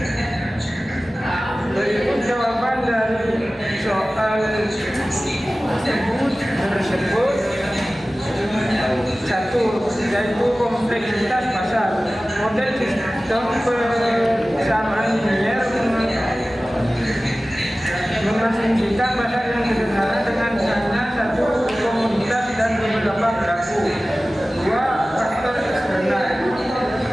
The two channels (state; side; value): normal; both; correlation 0.97